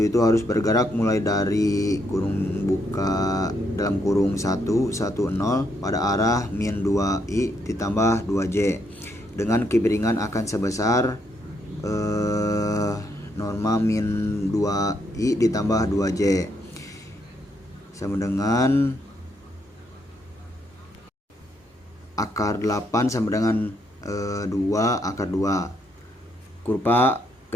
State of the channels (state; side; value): normal; both; correlation 0.75